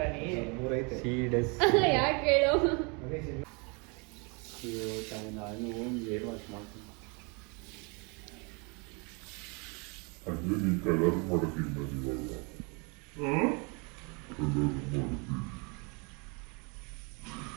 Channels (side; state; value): left; quieter; 32.3 dB